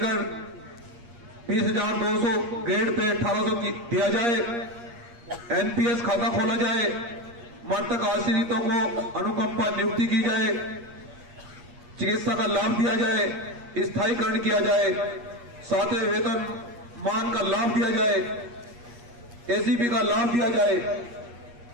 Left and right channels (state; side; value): late; left; 8.5 ms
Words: 20,200, ग्रेड पे 1800 दिया जाए, एनपीएस खाता खोला जाए, मृतक आश्रितों को अनुकंपा नियुक्ति की जाए, चिकित्सा का लाभ दिया जाए, स्थायीकरण किया जाए, 7वें वेतन मान का लाभ दिया जाए, एसीपी का लाभ दिया जाए,